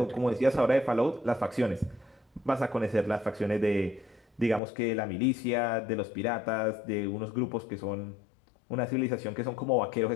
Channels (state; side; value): drops out; right; at 4.6 s